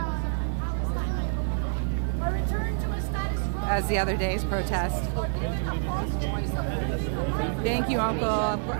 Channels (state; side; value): silent; left; 60 dB below the other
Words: as the other day's protest. Thank you, Uncle.